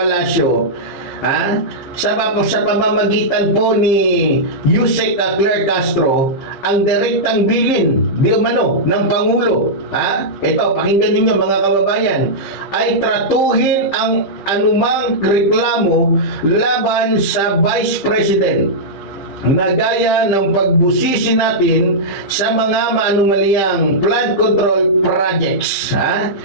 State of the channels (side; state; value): right; late; 15 ms